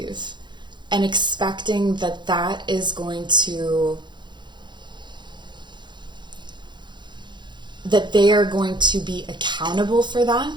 and expecting that is going to, that they are going to be accountable for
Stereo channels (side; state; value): left; late; 0.22 ms